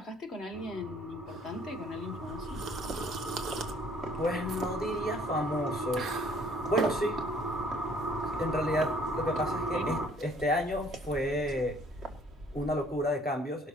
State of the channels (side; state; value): both; normal; correlation 0.59